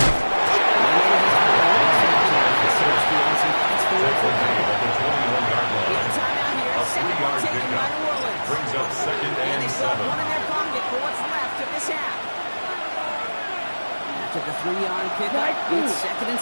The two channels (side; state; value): both; inverted; correlation -1.00